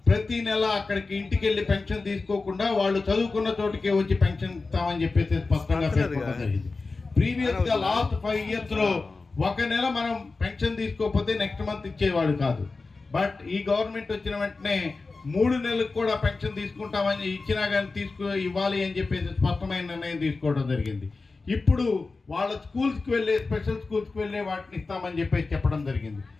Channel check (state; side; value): quieter; right; 3.9 dB